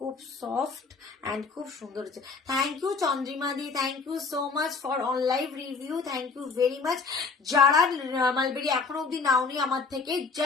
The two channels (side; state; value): right; quieter; 4.7 dB